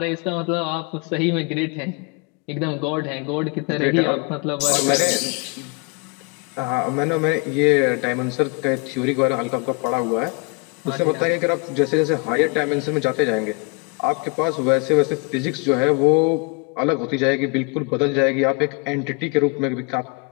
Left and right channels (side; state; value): right; quieter; 31.8 dB